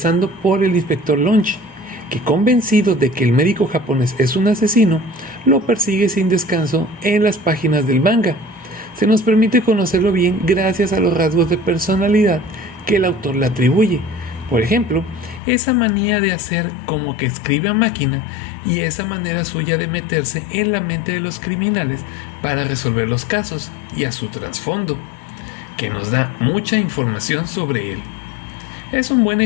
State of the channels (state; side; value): drops out; right; at 15.4 s